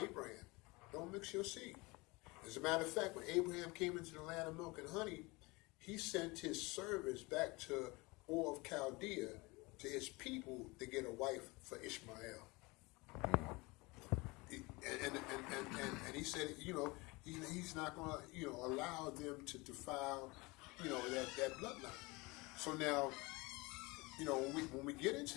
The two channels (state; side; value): quieter; right; 24.5 dB